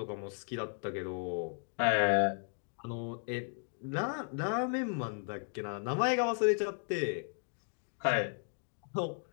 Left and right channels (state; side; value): silent; right; 54 dB below the other